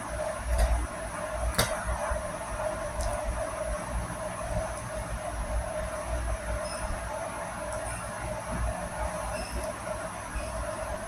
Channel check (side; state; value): both; identical; correlation 1.00